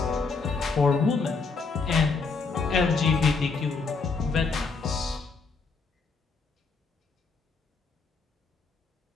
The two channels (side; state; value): right; quieter; 4.5 dB